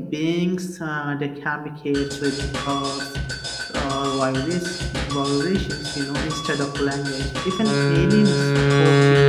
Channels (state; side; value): identical; both; correlation 1.00